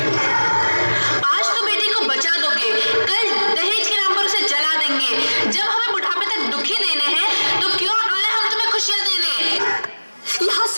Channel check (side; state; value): both; inverted; correlation -1.00